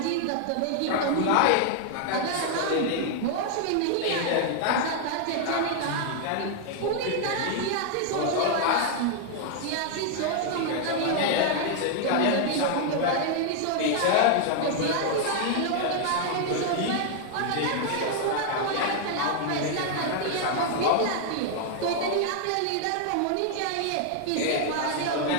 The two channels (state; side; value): different; both; correlation 0.00